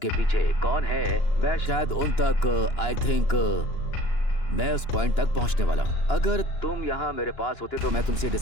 पीछे कौन है मैं शायद उन तक आई थिंक मैं उस पॉइंट तक पहुंचने वाला हूं। अगर तुम यहाँ मेरे पास होते तो मैं तुमसे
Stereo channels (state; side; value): late; right; 2.9 ms